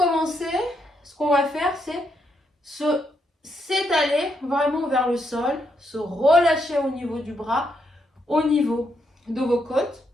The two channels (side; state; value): both; normal; correlation 0.78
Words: ce qu'on va faire, c'est s'étaler vraiment vers le sol, se relâcher au niveau du bras, au niveau de vos côtes,